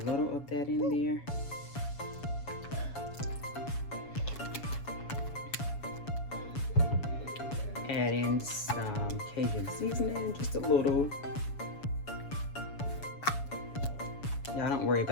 of that in there. Add in some Cajun seasoning, just a little. Y'all don't worry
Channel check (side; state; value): right; late; 7.1 ms